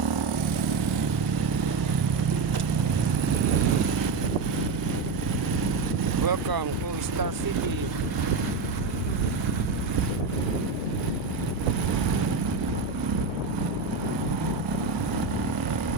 Welcome to Star City.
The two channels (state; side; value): quieter; left; 4.3 dB